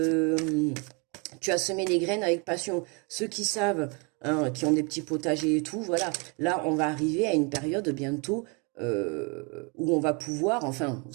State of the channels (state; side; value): quieter; left; 32.6 dB